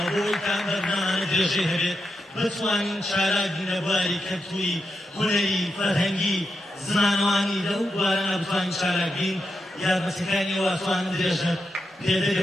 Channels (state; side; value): normal; both; correlation 0.86